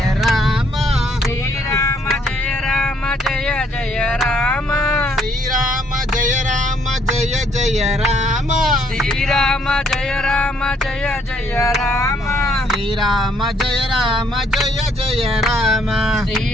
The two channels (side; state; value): both; normal; correlation 0.68